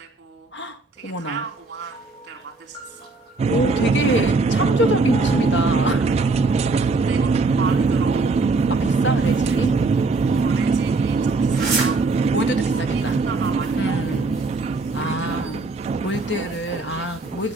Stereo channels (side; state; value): left; quieter; 3.6 dB